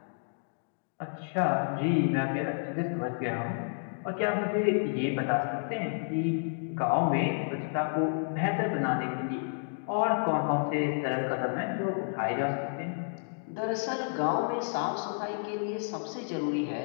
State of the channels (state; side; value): silent; right; digital silence